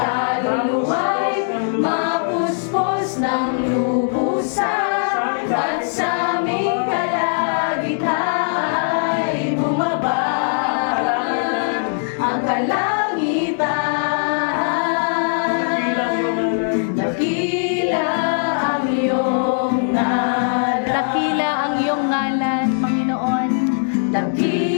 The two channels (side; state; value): right; silent; digital silence